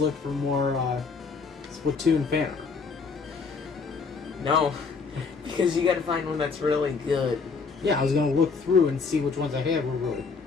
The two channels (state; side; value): quieter; right; 4.9 dB